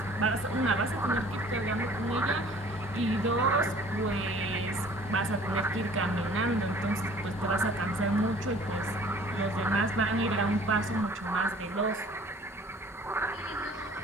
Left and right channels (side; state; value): both; normal; correlation 0.51